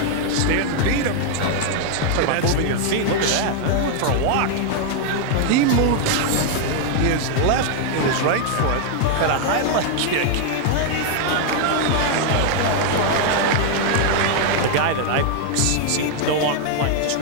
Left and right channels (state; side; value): different; both; correlation 0.00